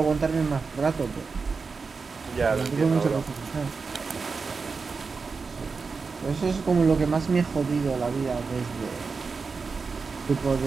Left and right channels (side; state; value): left; quieter; 4.8 dB